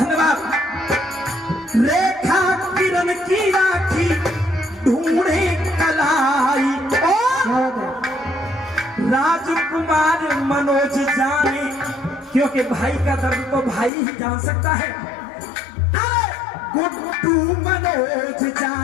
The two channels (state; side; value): drops out; right; at 13.9 s